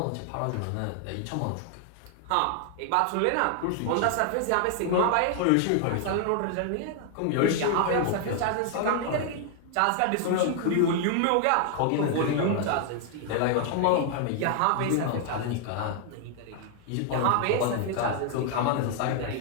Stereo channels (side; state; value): both; different; correlation 0.00